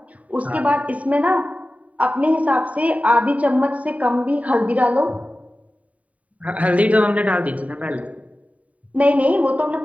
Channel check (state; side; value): late; left; 0.068 ms